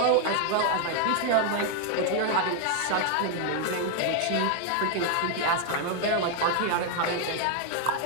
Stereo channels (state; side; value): different; both; correlation 0.00